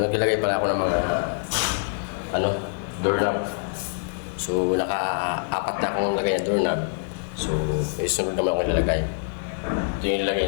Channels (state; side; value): silent; right; 56 dB below the other